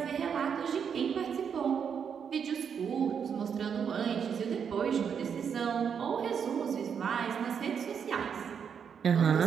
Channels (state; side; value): quieter; left; 7.2 dB